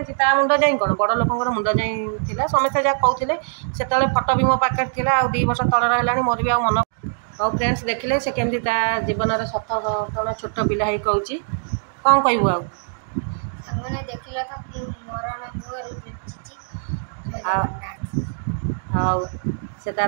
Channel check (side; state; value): left; silent; digital silence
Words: ता मुंड जाए कौन बड़ लोक मुंड जाए समस्ते जहाँ कहते से फटो भी मो पाखे था 2 वर्ष तलर है मोर भी मन और फ्रेंड्स देखिले से केमती जीवन सत घटना छोट पिला ही कहूँ कौन कहबू आउ से